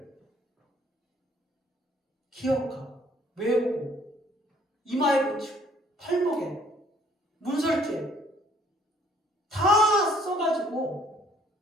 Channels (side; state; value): both; normal; correlation 0.61